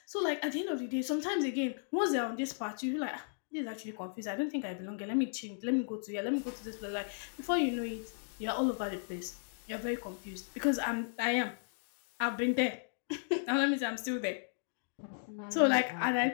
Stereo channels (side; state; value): right; silent; digital silence